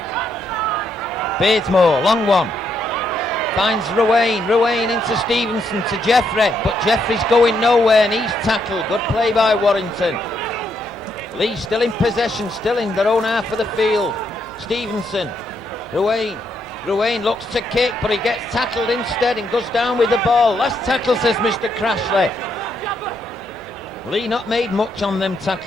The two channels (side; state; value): both; normal; correlation 0.76